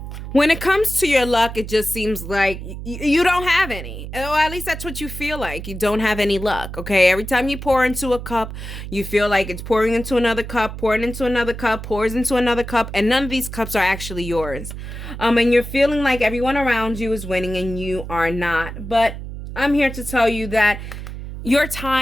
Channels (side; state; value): right; noise; hum, 9 dB below the sound